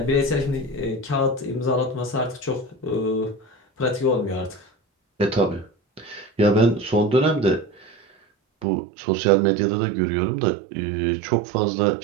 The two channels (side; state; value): left; drops out; at 8.7 s